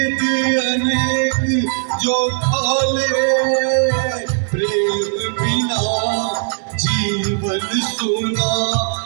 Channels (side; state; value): left; silent; 67 dB below the other